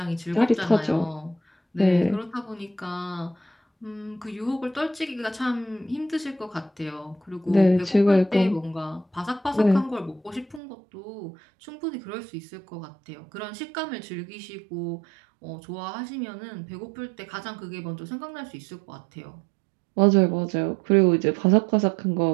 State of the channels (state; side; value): drops out; left; at 10.6 s